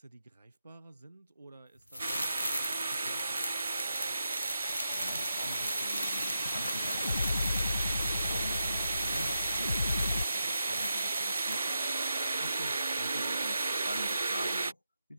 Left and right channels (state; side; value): inverted; both; correlation -0.87